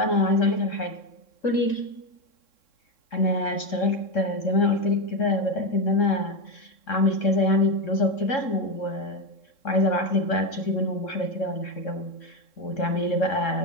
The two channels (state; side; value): late; right; 3.7 ms